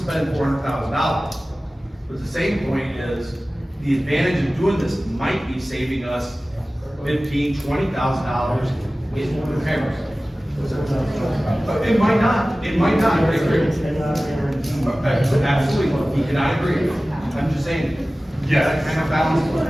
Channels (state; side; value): normal; both; correlation 0.97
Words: $400,000. But the same point is, the advantage of doing this might be saving us $15,000, $20,000 in repairs. It might not, I agree. Absolutely, we cannot agree. I'm just saying, Yeah. that kind of balance.